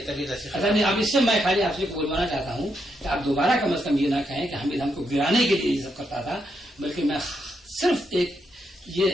नहीं, अब इससे मैं खाली आपसे बोलवाना चाहता हूँ कि आप दोबारा कम से कम ये ना कहें कि हामिद हमको गिराने के लिए ये सब करता था, बल्कि मैं सिर्फ एक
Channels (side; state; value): both; normal; correlation 0.80